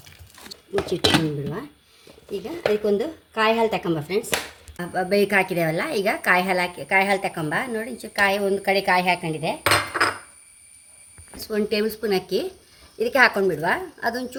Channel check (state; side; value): identical; both; correlation 1.00